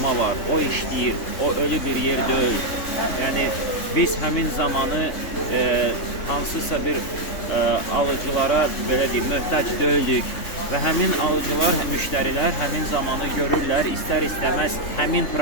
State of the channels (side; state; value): right; late; 3.3 ms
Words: var, o işləyir, o ölü bir yer deyil. Yəni, biz həmin zamanı hansısa bir alıcılara belə deyim, möhtac deyildik və həmin alıcılar, müştərilər həmin zamanı görürlər, istər-istəməz həmin